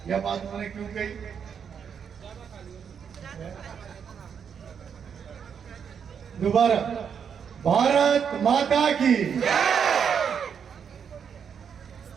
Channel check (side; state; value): left; quieter; 7.3 dB